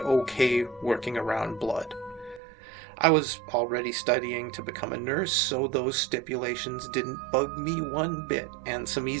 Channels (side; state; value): left; drops out; at 2.4 s